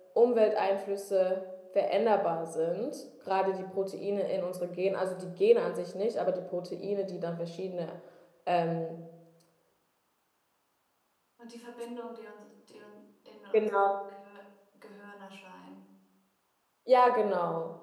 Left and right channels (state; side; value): identical; both; correlation 1.00